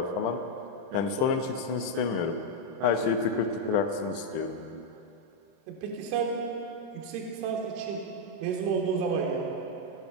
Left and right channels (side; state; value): left; late; 30 ms